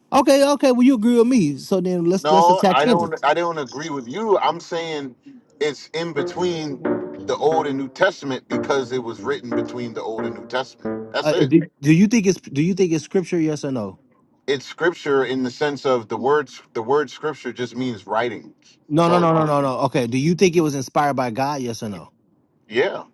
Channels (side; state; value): both; identical; correlation 1.00